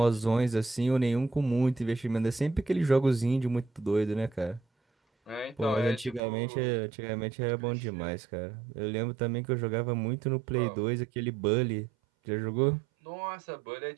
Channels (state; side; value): drops out; left; at 6.2 s